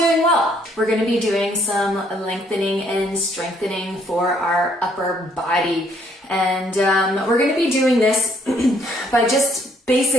well. We're going to be doing some lengthening and strengthening for our upper body. And we're going to be doing this by just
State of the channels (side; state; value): both; normal; correlation 0.66